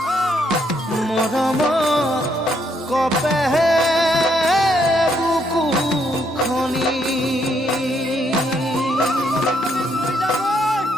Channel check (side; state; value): both; normal; correlation 0.73